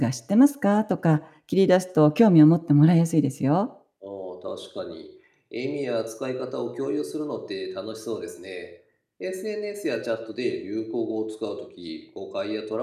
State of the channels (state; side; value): identical; both; correlation 1.00